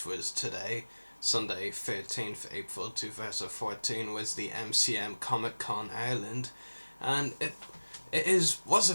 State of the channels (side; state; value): both; inverted; correlation -1.00